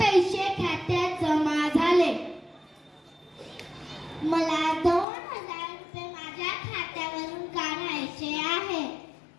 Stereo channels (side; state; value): right; drops out; at 5.1 s